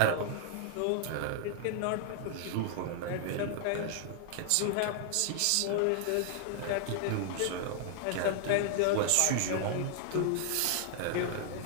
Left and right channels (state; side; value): different; both; correlation 0.00